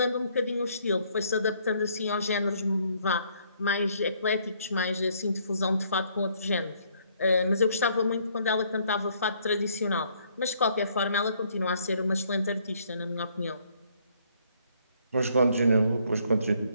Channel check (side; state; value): both; inverted; correlation -0.66